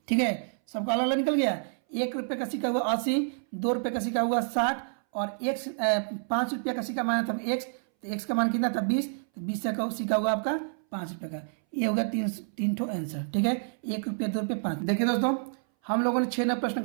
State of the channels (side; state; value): left; silent; 59 dB below the other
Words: ठीक है, सबका अलग अलग निकल गया। 1 रुपये का सिक्का हुआ 80, 2 रुपये का सिक्का हुआ 60 और 5 रुपये का सिक्का माना था x। तो x का मान कितना था 20, तो 20 का सिक्का हुआ आपका 5 रुपये का। ये होगा तीन ठो आंसर। ठीक है, 1 रुपये 2 रुपये 5। देखिए दोस्तों, हम लोगों ने 6 नए